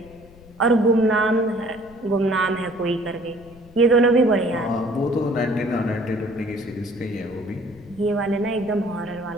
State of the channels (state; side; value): noise; left; rumble, 23 dB below the sound